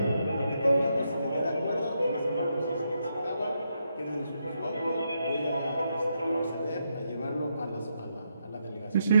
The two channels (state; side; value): inverted; both; correlation -0.81